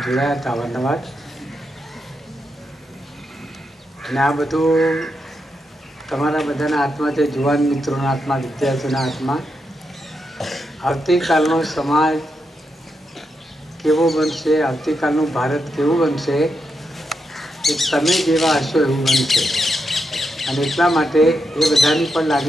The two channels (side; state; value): both; normal; correlation 0.84